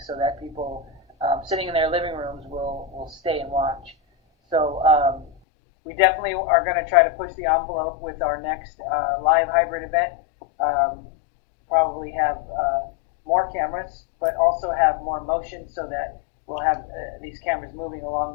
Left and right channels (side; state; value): right; drops out; at 5.3 s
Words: so that people sitting in their living rooms will stay and watch. So we definitely are going to try to push the envelope with our next live hybrid event. Probably have more cameras, but also have more motion so that we'll have these cameras moving along